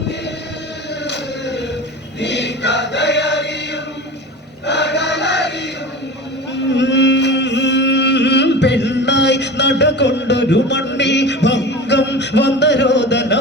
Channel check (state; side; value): normal; both; correlation 0.32